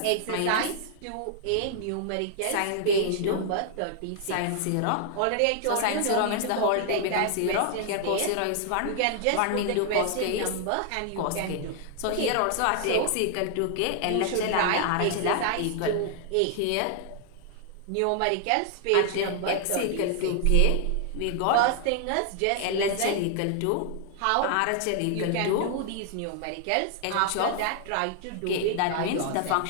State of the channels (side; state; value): both; different; correlation 0.00